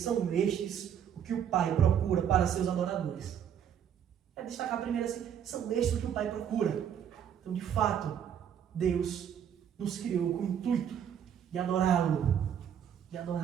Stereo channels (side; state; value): left; quieter; 8.9 dB